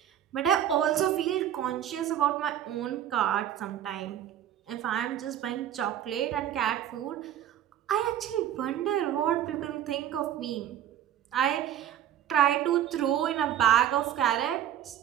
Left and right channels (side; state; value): left; quieter; 11.0 dB